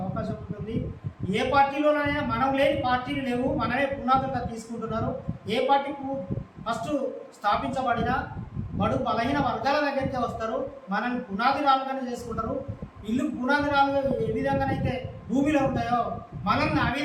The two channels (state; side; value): identical; both; correlation 1.00